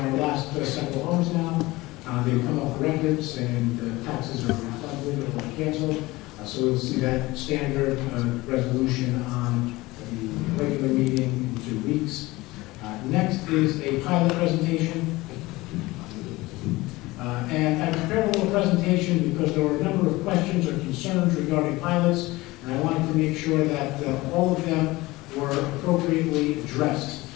last several homes now, they've come off the records and the taxes are refunded or canceled. So we'll see that standard resolution on the regular meeting in 2 weeks. Next is a pilot presentation. And I prepared a little presentation because there were a number of questions or concerns regarding pilots, and I wanted to make sure that all of them were appropriately addressed.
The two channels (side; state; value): right; quieter; 20.4 dB